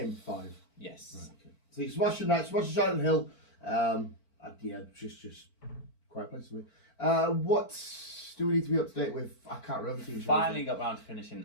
5? Yes. Right, okay. So you're smashing Silent Hill. Just quite place for me. What do we need to be up to date with? I can't remember. Finally got round to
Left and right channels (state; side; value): late; right; 4.5 ms